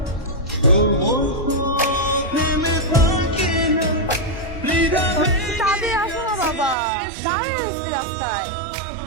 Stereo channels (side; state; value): left; drops out; at 6.8 s